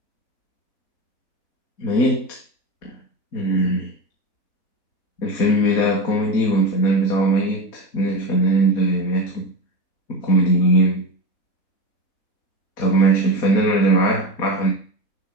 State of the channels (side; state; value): right; late; 4.2 ms